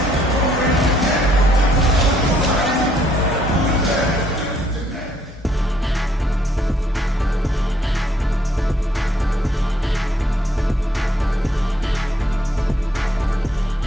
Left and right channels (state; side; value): normal; both; correlation 0.68